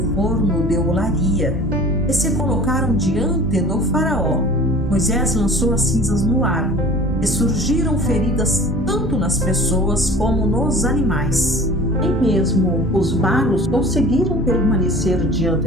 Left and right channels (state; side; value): normal; both; correlation 0.43